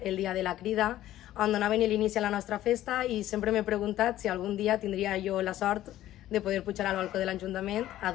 el dia de la crida, on donaven l'inici a la nostra festa i sempre m'he preguntat si algun dia tindria jo la sort de poder pujar al balcó de l'Ajuntament a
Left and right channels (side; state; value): right; quieter; 13.8 dB